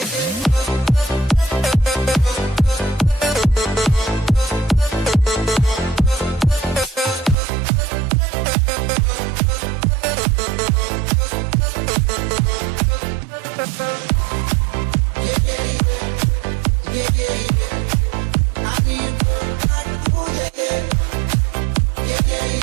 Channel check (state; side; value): drops out; left; at 7.4 s